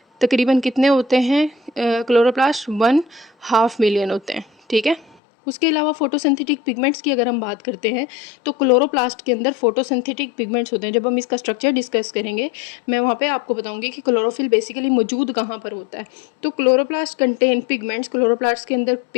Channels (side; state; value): right; drops out; at 5.2 s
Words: तकरीबन कितने होते हैं क्लोरोप्लास्ट? 1.5 मिलियन होते हैं, ठीक है। उसके अलावा फोटोसिंथेटिक पिगमेंट्स की अगर हम बात करते हैं तो क्लोरोप्लास्ट के अंदर फोटोसिंथेटिक पिगमेंट्स होते हैं। जब हम इसका स्ट्रक्चर डिस्कस करेंगे मैं वहाँ पे आपको बताऊंगी कि क्लोरोफिल बेसिकली मौजूद कहाँ पर होता है। तो क्लोरोप्लास्ट कंटेन पिगमेंट्स, क्लोरोप्लास्ट के अंदर